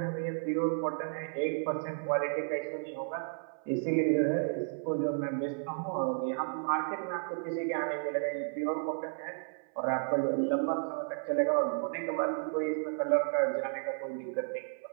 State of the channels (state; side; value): silent; left; 55 dB below the other